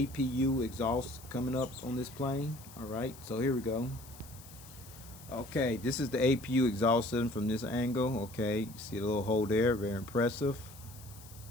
exhaust coming up on this plane. Alright, so here we go. Okay, this is the APU exhaust system from this angle. Okay, you see the little hole there, very impressive.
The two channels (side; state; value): left; noise; hiss, 19 dB below the sound